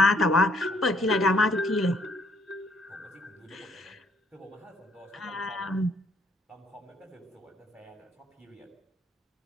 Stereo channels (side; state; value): both; normal; correlation 0.67